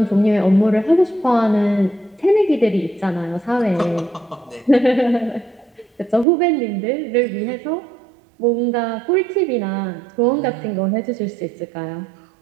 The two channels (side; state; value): left; drops out; at 6.2 s